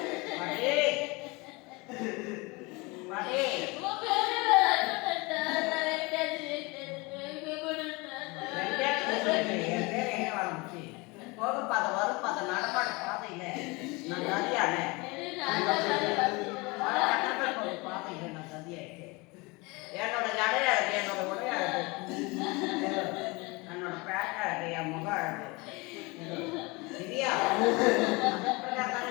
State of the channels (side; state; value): right; quieter; 25.7 dB